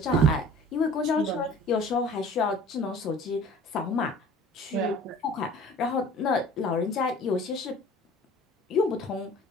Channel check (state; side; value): normal; both; correlation 0.47